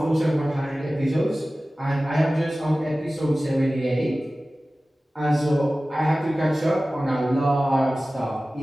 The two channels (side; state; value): both; normal; correlation 0.97